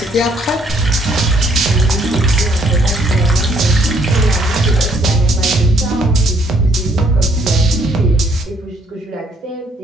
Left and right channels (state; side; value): normal; both; correlation 0.66